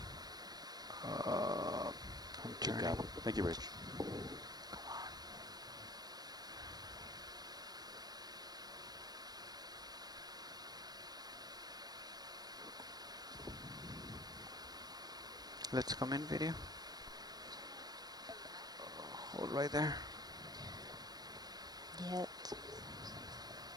I'm turning. Thank you, Rich. Come on. Let's come in video. Hold right there. Yep.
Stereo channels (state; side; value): late; left; 0.19 ms